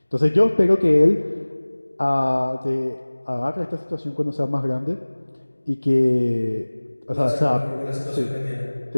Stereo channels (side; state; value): both; inverted; correlation -1.00